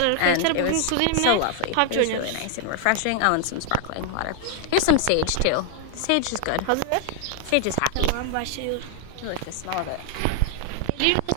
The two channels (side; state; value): both; different; correlation 0.00